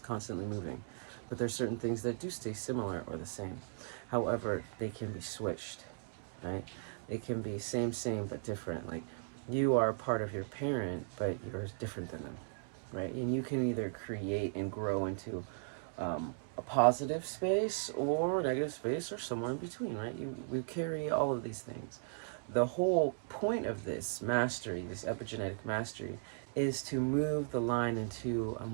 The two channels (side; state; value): left; silent; digital silence